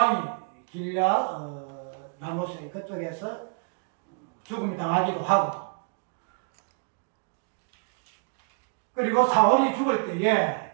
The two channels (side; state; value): left; quieter; 38.4 dB